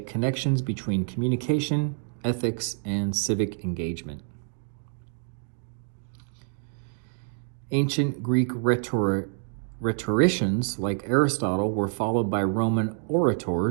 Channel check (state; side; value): silent; left; 60 dB below the other